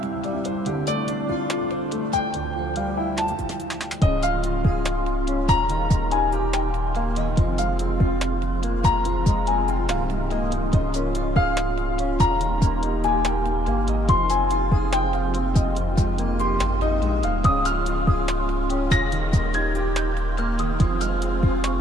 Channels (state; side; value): normal; both; correlation 0.71